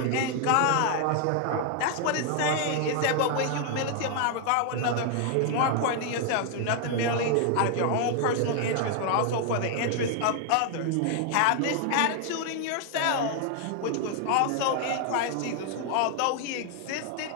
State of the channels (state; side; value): different; both; correlation 0.00